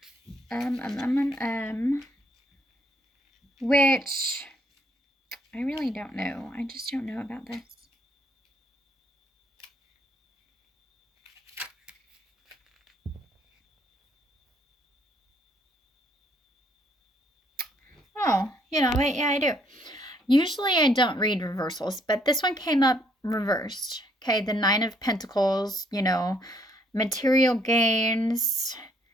Which I really don't know. I just don't know about this. Oh, you know, wait, yeah, I do. Usually I don't read reversals, but this one came up reversed. Okay, the Nine of Pentacles, material gains,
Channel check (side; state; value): both; normal; correlation 0.68